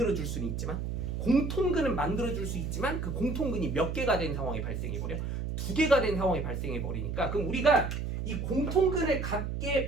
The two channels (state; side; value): noise; right; hum, 3 dB below the sound